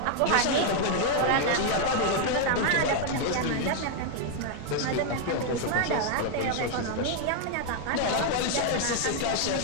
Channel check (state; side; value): different; both; correlation 0.00